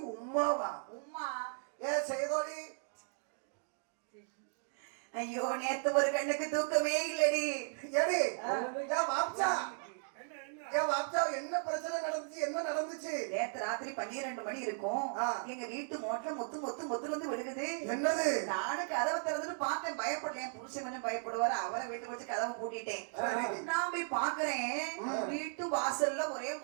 உம்மாவா? உம்மா ஏ செய்தோடி, ஐயோ நேத்து ஒரு கண்ணுக்கு தூக்கமே இல்லடி. ஏடி ஏன் வாப்சா, ஏன் வாப்சா என்ன பிரச்சனை நடந்துச்சு? என்ன நடந்துச்சு? நேத்து ராத்திரி 12 மணி இருக்கும். எங்க வீட்டு மோட்டர் மொத்து வந்து விழுகுது. என்னது? நானும் கதவை திறந்துட்டு பார்த்தேன். பயப்படல. என் புருஷன் கொஞ்சம் பயப்படுவாரு. அவரை வீட்டுக்கு வச்சு கதவை பூட்டிட்டேன். நான் போய் பாக்குறேன், வீட்டு வாசல்ல ஒரே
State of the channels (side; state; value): left; silent; digital silence